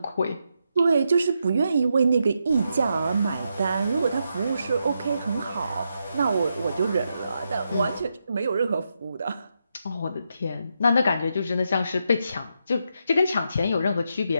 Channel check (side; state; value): both; inverted; correlation -0.83